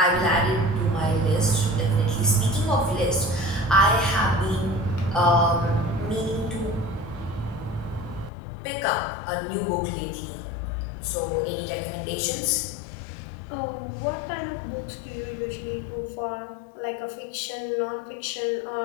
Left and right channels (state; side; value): drops out; right; at 8.3 s